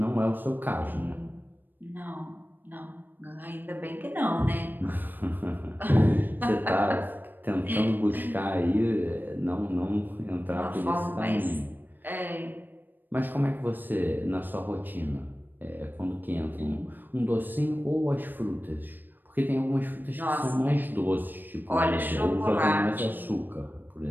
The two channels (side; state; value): left; late; 0.091 ms